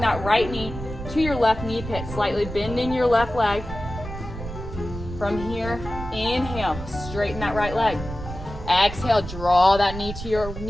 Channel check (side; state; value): right; noise; rumble, 9 dB below the sound